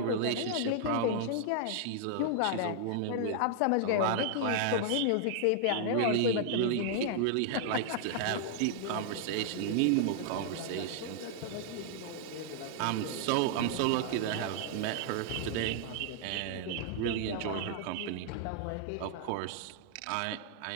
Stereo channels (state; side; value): different; both; correlation -0.01